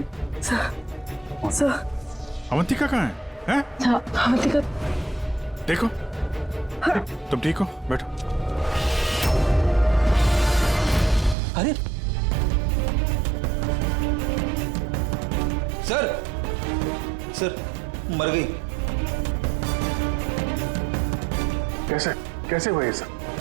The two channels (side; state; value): left; drops out; at 11.4 s